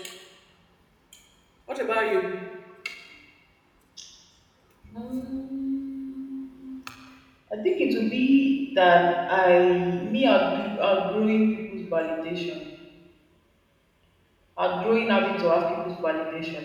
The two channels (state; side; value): identical; both; correlation 1.00